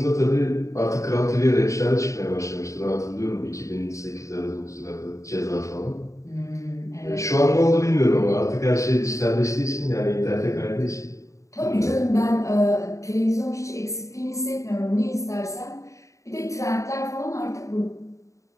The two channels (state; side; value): late; right; 0.15 ms